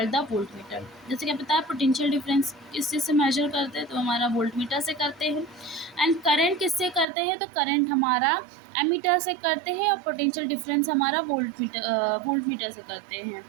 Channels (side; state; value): left; drops out; at 7.1 s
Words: the voltmeter. जैसे कि पता है पोटेंशियल डिफरेंस किस चीज़ से मेजर करते हैं, तो हमारा वोल्टमीटर से करते हैं। एंड करंट किससे करते हैं, तो करंट हमारा एमीटर से करते हैं और पोटेंशियल डिफरेंस हमारा वोल्टमीटर से करते हैं।